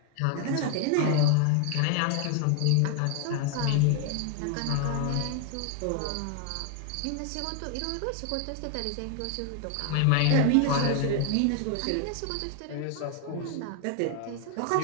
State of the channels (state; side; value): different; both; correlation 0.01